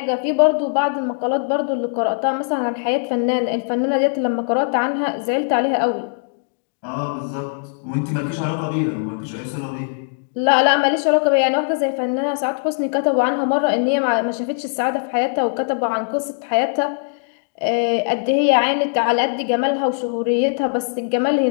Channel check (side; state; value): right; silent; digital silence